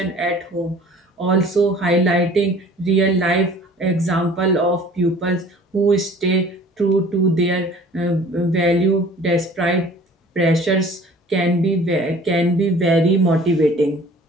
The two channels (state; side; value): normal; both; correlation 0.49